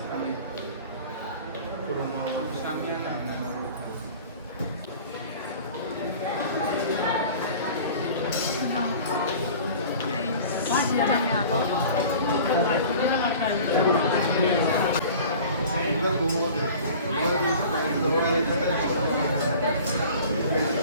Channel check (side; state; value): both; inverted; correlation -0.43